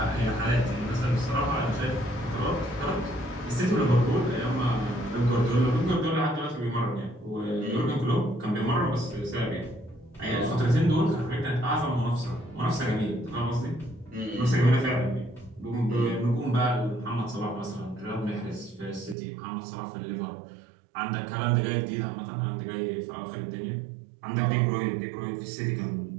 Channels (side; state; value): left; drops out; at 19.2 s